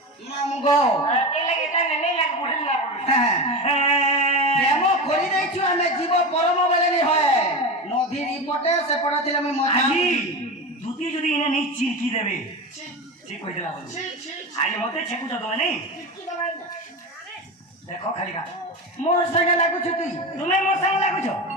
मामुगो के लगे ता नहीं लाग बोल ना प्रेम करी देछु हमें जीव परम बेले नहीं होए नदी रिपोर्टे से पड़थिले मैं मजा আজি দুতি যদি ইনে নি চিরকি দেবে ঠিক কই দিলা বল আজ মতে ছেকু তো নাই দেখো খালি কা मोर संगे लागु छु तुई তুমি মোর সঙ্গে লাগুছো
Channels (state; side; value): normal; both; correlation 0.23